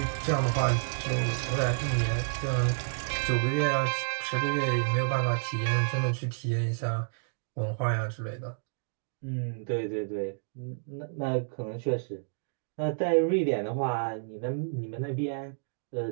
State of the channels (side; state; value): left; silent; digital silence